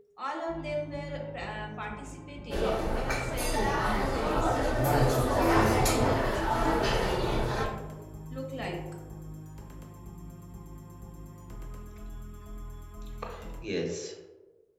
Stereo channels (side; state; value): both; identical; correlation 1.00